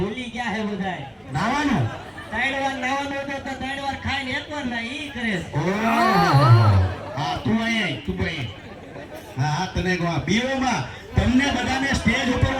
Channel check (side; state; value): both; identical; correlation 1.00